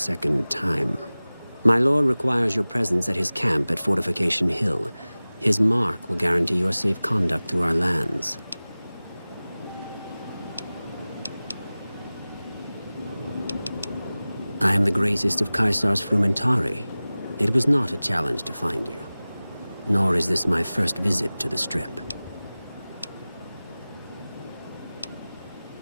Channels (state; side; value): inverted; both; correlation -0.98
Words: time. My lord requires your presence at his camp at Fortification Hill. His mark will guarantee your safe conduct through our lands. I am the greatest of Caesar's frumentari. It was not a challenge to find you. Nor is this my first visit to the Strip.